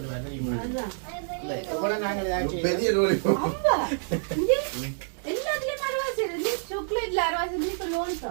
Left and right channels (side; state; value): left; silent; digital silence